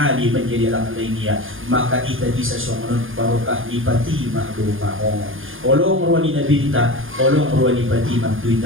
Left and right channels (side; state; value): left; late; 0.59 ms